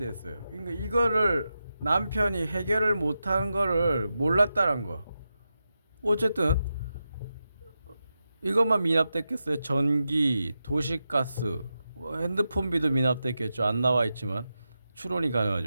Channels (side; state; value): both; inverted; correlation -0.89